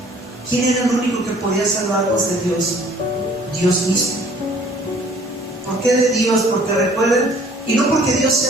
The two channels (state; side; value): normal; both; correlation 0.56